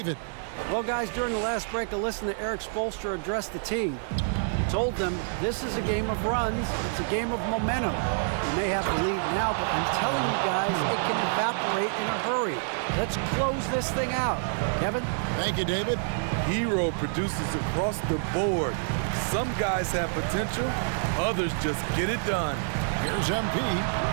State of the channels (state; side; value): silent; left; 60 dB below the other